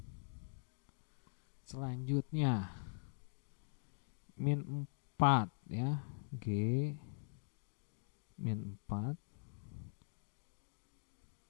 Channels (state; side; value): silent; right; digital silence